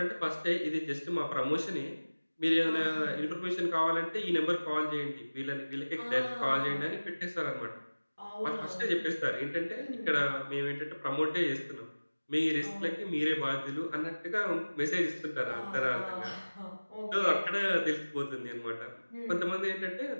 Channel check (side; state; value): both; inverted; correlation -1.00